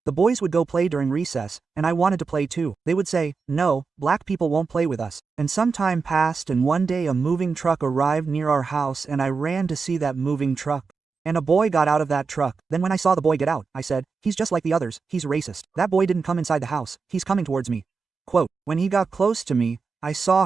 The boys would go play during recess, and I wanted to play too. They would say, "No, black people won't play with us." And some time passed, and one day a moving truck arrived near our house, and I ran to see that moving truck. And a boy got out of that truck. Then when I saw the boy get out, I said, "He's just like the others, he's racist." That boy didn't come inside the house, he's coming towards me. Quote, when he got close to me, I saw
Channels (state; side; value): quieter; left; 4.9 dB